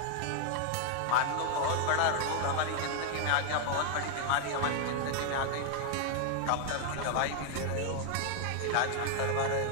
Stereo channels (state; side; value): different; both; correlation 0.00